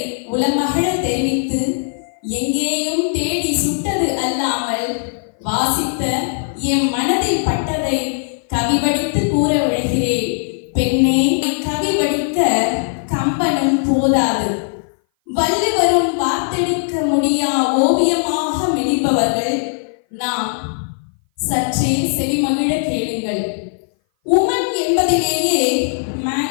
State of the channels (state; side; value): silent; right; 58 dB below the other